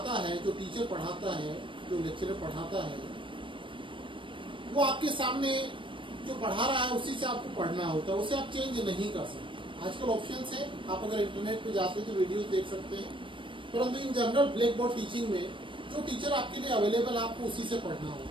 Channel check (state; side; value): late; left; 0.25 ms